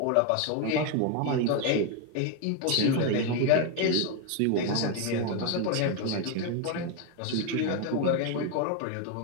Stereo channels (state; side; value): different; both; correlation 0.02